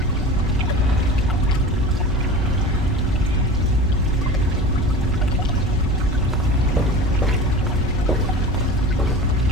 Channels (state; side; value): normal; both; correlation 0.35